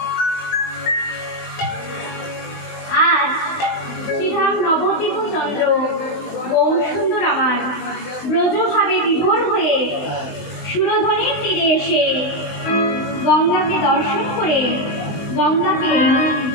আজ শ্রীধাম নবদ্বীপ চন্দ্র গৌর সুন্দর আমার ব্রজভাবে বিভোর হয়ে সুরধনির তীরে এসে গঙ্গাকে দর্শন করে গঙ্গাকে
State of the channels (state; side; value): late; right; 20 ms